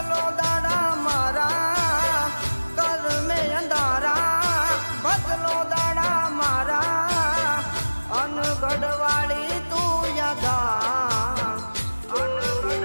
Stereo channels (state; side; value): inverted; both; correlation -1.00